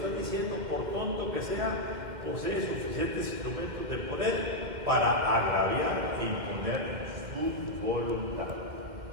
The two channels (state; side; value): late; left; 2.1 ms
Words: diciendo, por tonto que sea, posee suficientes instrumentos de poder para agraviar e imponer su voluntad.